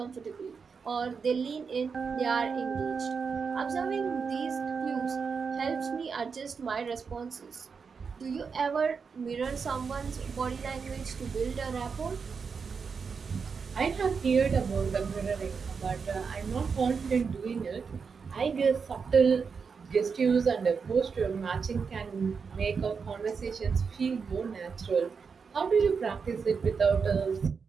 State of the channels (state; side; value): quieter; left; 5.6 dB